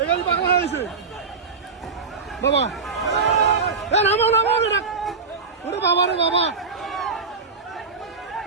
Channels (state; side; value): quieter; left; 4.7 dB